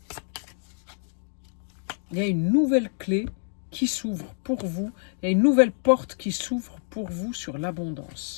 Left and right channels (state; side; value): silent; right; digital silence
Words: Il y a une nouvelle clé qui s'ouvre pour vous. Il y a une nouvelle porte qui s'ouvre pour vous sur